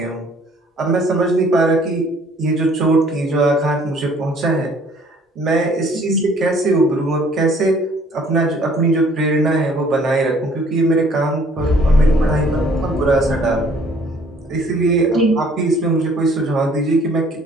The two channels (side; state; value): both; normal; correlation 0.58